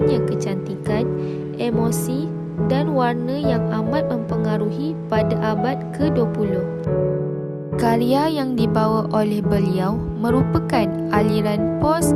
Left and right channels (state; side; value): identical; both; correlation 1.00